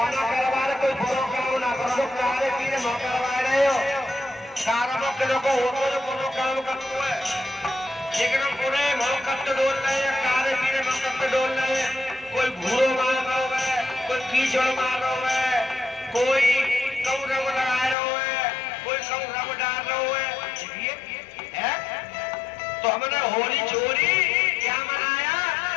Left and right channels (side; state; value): right; drops out; at 17.9 s